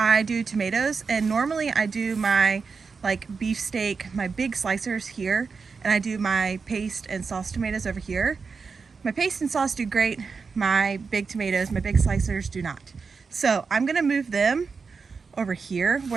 do tomatoes, and normally I do my like beefsteak, my big slicers here, and I do my paste and sauce tomatoes over here. My paste and sauce do great. My big tomatoes, my big slicers do not. So I'm gonna move them over here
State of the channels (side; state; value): left; quieter; 5.0 dB